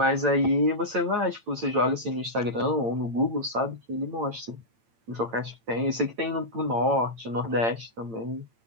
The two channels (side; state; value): left; late; 8.8 ms